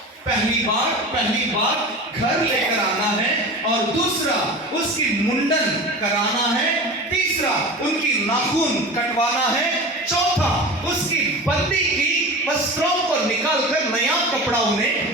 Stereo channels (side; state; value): both; normal; correlation 0.32